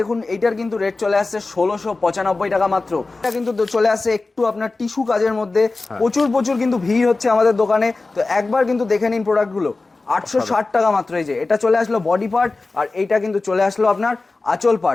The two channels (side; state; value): right; quieter; 3.5 dB